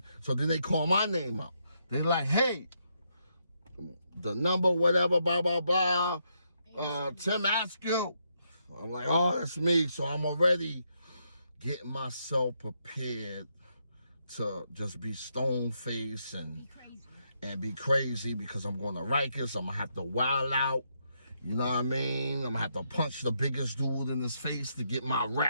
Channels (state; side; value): inverted; both; correlation -0.78